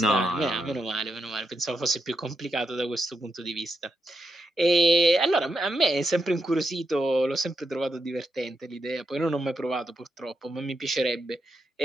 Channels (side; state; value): both; normal; correlation 0.83